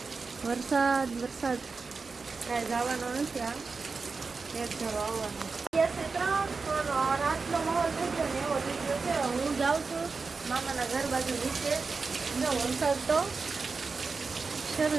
વરસાદ કાંઈ જવાનો નથી. આ એક ધારો આવવાનો. રાતનો માહોલ થઈ ગયો ને એવો લીધો છે. હું જાઉં છું મામાના ઘર બાજુ નીચે. જો વરસાદ તો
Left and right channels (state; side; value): quieter; left; 4.5 dB